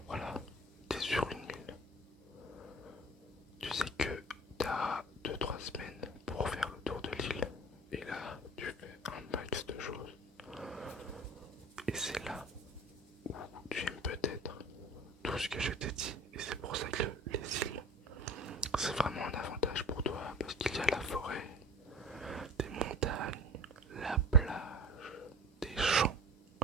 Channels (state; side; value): normal; both; correlation 0.43